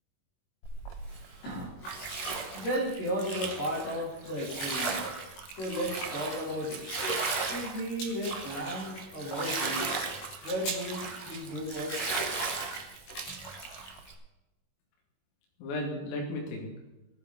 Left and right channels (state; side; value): late; right; 21 ms